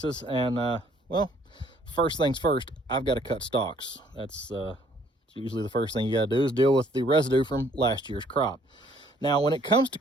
and well, first things first, I've got to cut stalks. That's usually the first thing you got to do is deal with the residue from last year's crop. Now, when it comes to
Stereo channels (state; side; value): normal; both; correlation 0.62